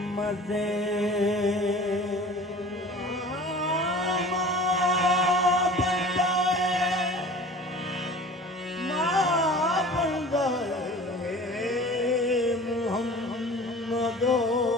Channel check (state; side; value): normal; both; correlation 0.42